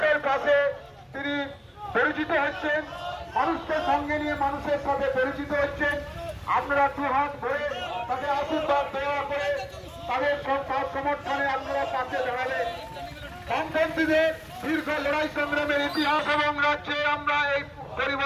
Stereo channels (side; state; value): both; identical; correlation 1.00